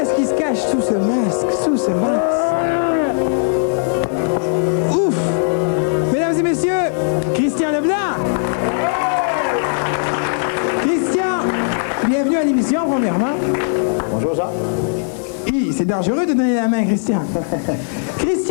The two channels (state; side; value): silent; right; digital silence